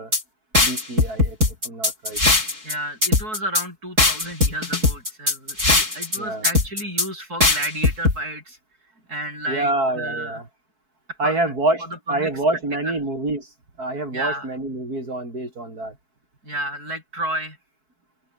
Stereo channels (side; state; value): left; late; 4.6 ms